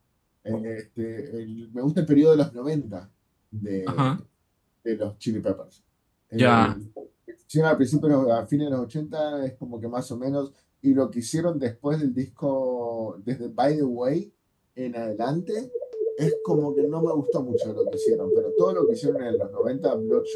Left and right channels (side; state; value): both; identical; correlation 1.00